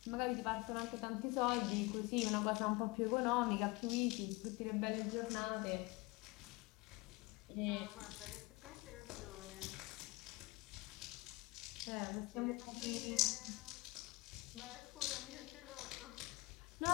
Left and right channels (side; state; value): right; quieter; 23.0 dB